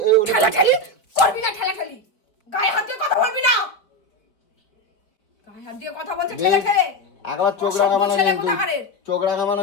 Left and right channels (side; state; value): right; late; 4.5 ms